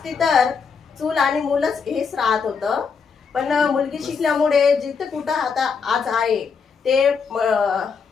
तर चूल आणि मूलच हेच राहत होतं, पण मुलगी शिकल्यामुळे जिथं कुठं आता आज आहे ते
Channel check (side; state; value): right; quieter; 5.7 dB